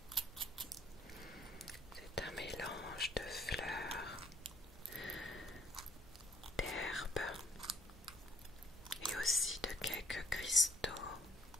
C'est un mélange de fleurs, d'herbes et aussi de quelques cristaux.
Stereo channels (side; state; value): both; normal; correlation 0.61